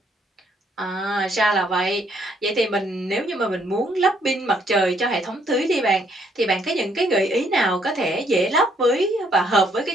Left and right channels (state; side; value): normal; both; correlation 0.69